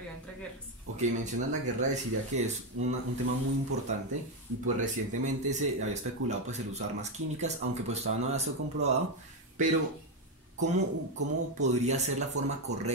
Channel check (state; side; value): normal; both; correlation 0.07